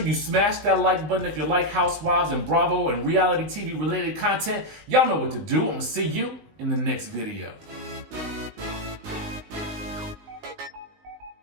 you smash that like button if you like Housewives and Bravo and reality TV related content. Y'all know what to do. I'm gonna see you in the next video.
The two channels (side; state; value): left; late; 19 ms